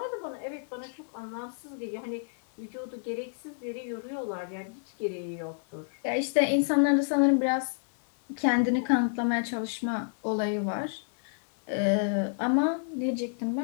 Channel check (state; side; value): silent; right; 58 dB below the other